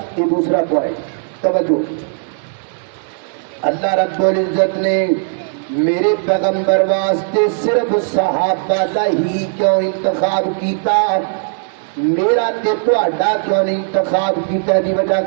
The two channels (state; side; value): silent; left; digital silence